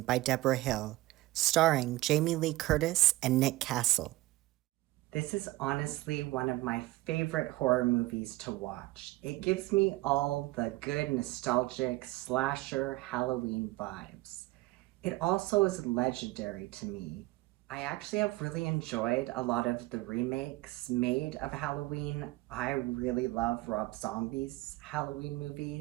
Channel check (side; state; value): left; quieter; 19.1 dB